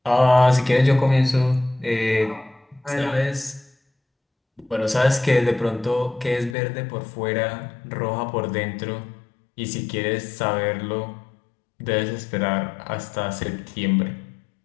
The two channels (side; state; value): right; drops out; at 6.6 s